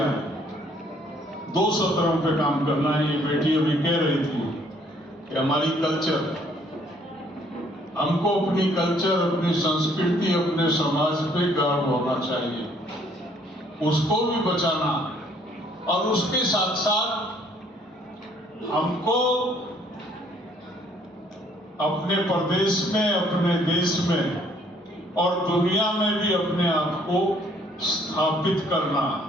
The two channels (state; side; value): normal; both; correlation 0.63